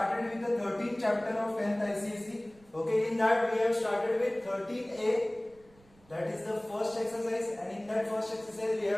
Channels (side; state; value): right; noise; rumble, 28 dB below the sound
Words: with the 13th chapter of 10th ICSE. Okay, in that we have started with 13A, that is the first exercise, and in that first exercise we